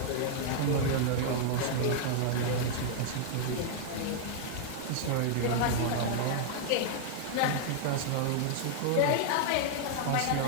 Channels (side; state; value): both; different; correlation -0.01